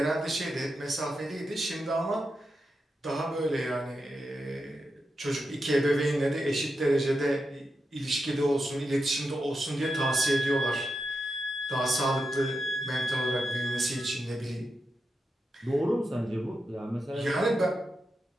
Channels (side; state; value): both; normal; correlation 0.87